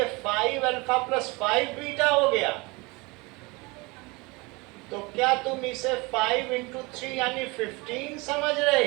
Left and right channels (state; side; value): quieter; left; 25.7 dB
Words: 5 अल्फा प्लस 5 बीटा हो गया? तो क्या तुम इसे 5 इंटू 3 यानी 15 समझ रहे